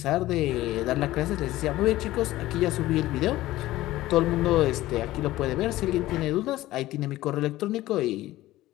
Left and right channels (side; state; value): right; quieter; 16.4 dB